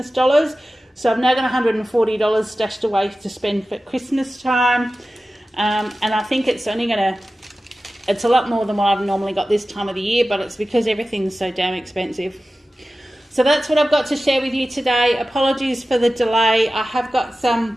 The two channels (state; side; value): normal; both; correlation 0.95